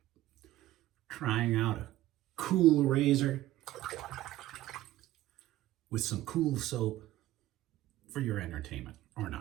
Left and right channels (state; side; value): quieter; left; 15.2 dB